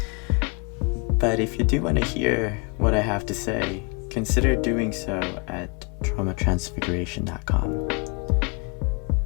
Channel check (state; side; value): quieter; right; 32.5 dB